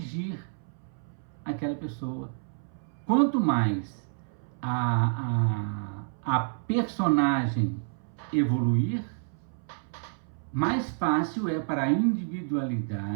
aquela pessoa. Quanto mais a personagem evoluir, mais fácil é para a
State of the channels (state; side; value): silent; left; 58 dB below the other